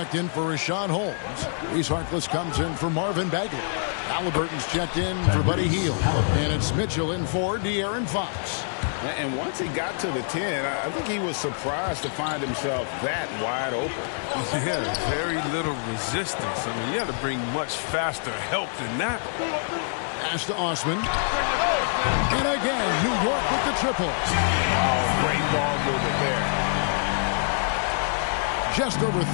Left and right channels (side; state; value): right; silent; digital silence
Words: in for Rashawn Holmes. Reese Harkless comes in for Marvin Bagley. Halliburton's checked in for Buddy Hield. And it's Mitchell in for De'Aaron Fox. And once he got to the 10, I think he was surprised to find himself that wide open. Yeah, very little resistance. I mean, you had to bring much faster help than that. Pass to Osman. And again, New York with the triple. Oh, great ball movement there. Just over